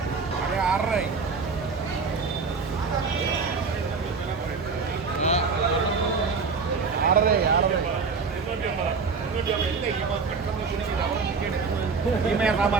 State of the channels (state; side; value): quieter; left; 4.8 dB